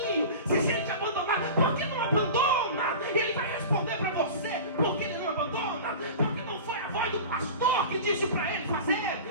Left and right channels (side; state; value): both; inverted; correlation -0.34